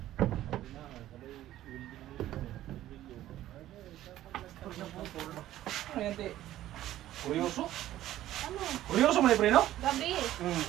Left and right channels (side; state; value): left; quieter; 13.7 dB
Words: Ayan, te. Kuryoso? Ano? Kuryoso mo na yung preno? Gabi.